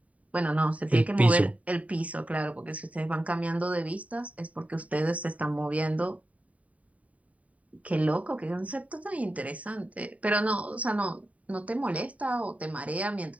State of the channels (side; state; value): left; late; 0.068 ms